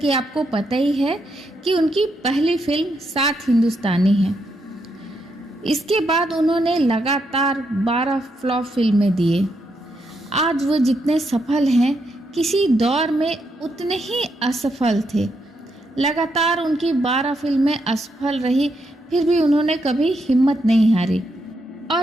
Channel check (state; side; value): normal; both; correlation 0.79